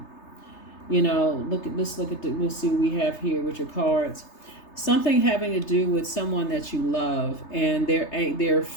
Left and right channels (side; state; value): right; late; 3.3 ms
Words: we'll see what we have here with your cards. Something having to do with someone that you love, and they're